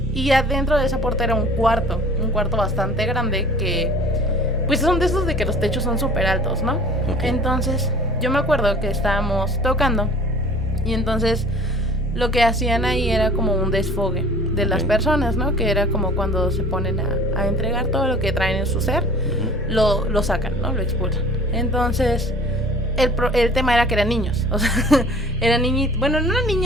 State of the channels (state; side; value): normal; both; correlation 0.47